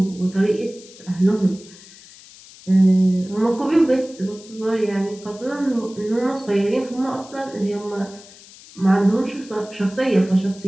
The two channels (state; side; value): noise; left; hiss, 21 dB below the sound